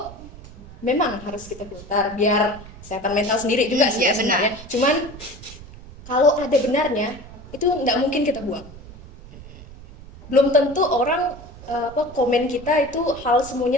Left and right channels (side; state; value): right; noise; rumble, 17 dB below the sound